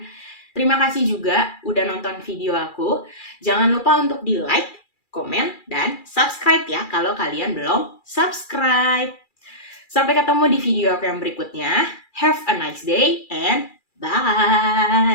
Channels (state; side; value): late; right; 2.4 ms